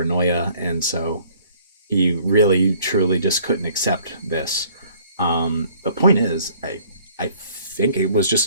and so he really truly just couldn't accept this. The point is, I think it was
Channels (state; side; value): inverted; both; correlation -0.57